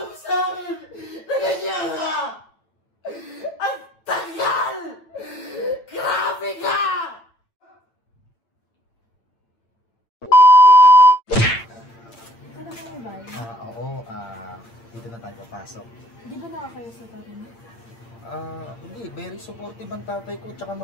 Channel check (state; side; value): late; right; 8.9 ms